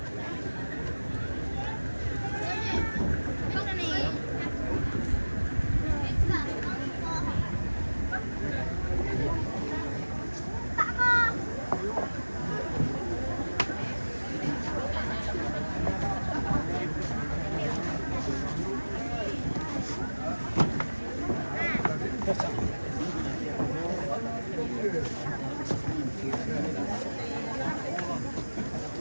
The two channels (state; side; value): inverted; both; correlation -1.00